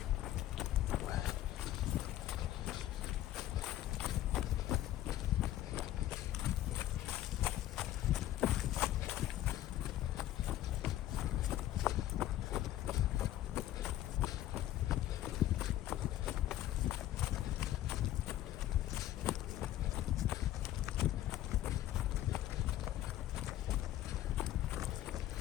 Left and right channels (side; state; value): right; quieter; 13.3 dB